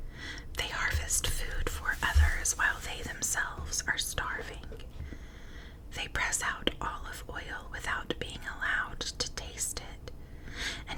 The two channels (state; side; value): identical; both; correlation 1.00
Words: They harvest food for others while they themselves are starving. They press out olive oil without being allowed to taste it,